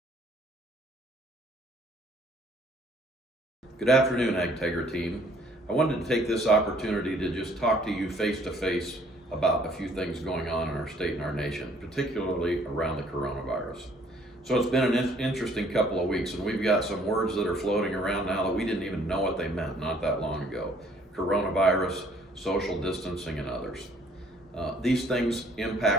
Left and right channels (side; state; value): both; normal; correlation 0.60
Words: Good afternoon, AgTegra team. I wanted to take this opportunity to just talk to you face to face about a few things going on in our state and our nation, particularly around the coronavirus. So it's been an interesting couple of weeks, and we've got some words that are floating around now that we didn't even know what they meant not that long ago. Coronavirus, social distancing, and others. These things